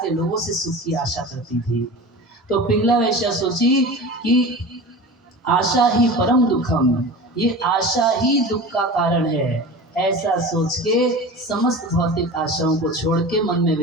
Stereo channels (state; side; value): normal; both; correlation 0.33